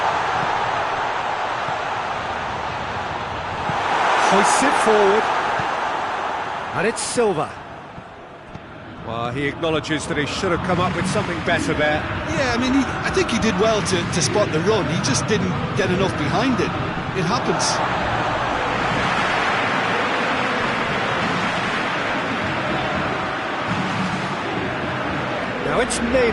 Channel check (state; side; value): identical; both; correlation 1.00